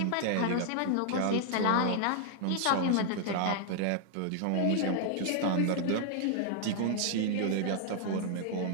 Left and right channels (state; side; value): different; both; correlation 0.00